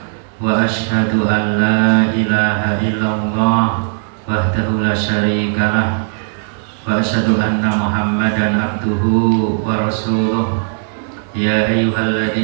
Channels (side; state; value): left; silent; 69 dB below the other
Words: Wa asyhadu an la ilaha illallah wahdahu la syarikalah wa asyhadu anna Muhammadan abduhu wa rasuluh. Ya